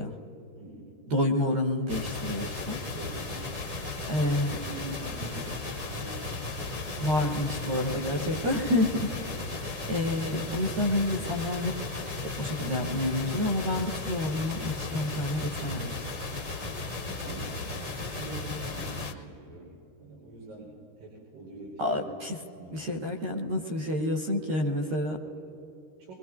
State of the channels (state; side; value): late; left; 13 ms